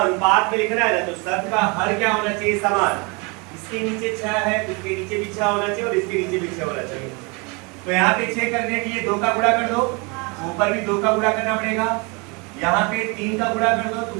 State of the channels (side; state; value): left; quieter; 30.1 dB